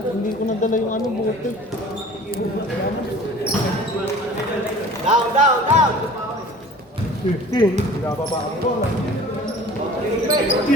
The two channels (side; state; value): both; normal; correlation 0.44